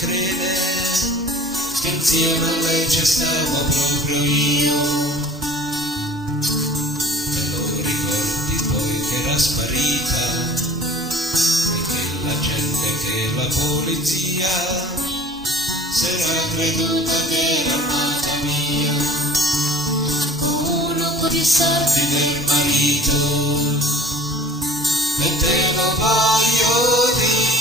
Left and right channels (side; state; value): both; normal; correlation 0.45